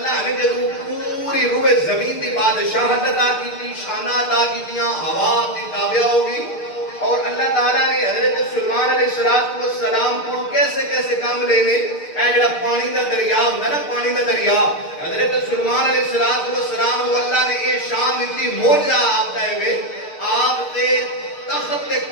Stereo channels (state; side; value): late; right; 6.6 ms